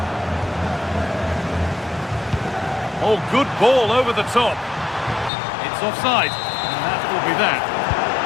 Oh, good ball over the top. It's offside, and that will be that.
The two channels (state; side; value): drops out; right; at 5.3 s